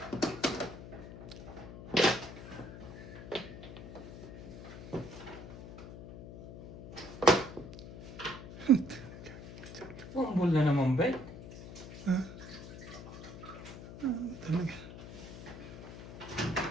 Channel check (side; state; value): left; noise; hum, 12 dB below the sound